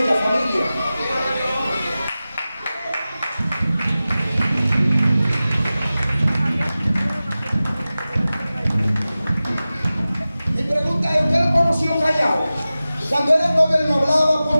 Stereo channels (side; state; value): both; inverted; correlation -0.96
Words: familia? Mi pregunta es, ¿usted lo conoció callado? Cuando era novio él no hablaba, ¿por